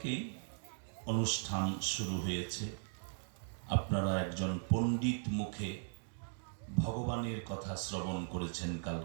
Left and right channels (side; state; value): left; silent; digital silence